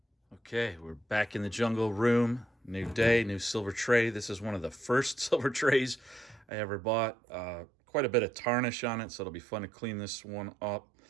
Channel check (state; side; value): drops out; left; at 6.5 s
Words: Okay, we're back in the jungle room. New day, new silver tray. This is one of the first silver trays I ever bought. Quite a bit of tarnish on it, so it'll be fun to clean this one up.